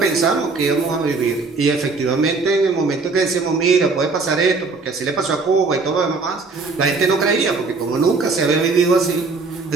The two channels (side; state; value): left; quieter; 4.0 dB